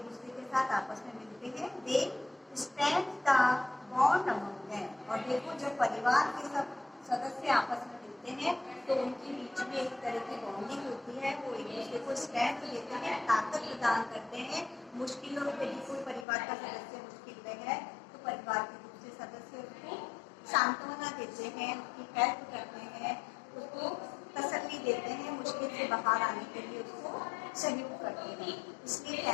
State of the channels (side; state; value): right; drops out; at 16.2 s